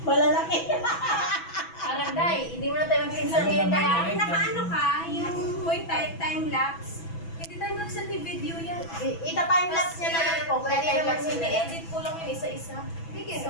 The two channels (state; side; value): late; right; 6.1 ms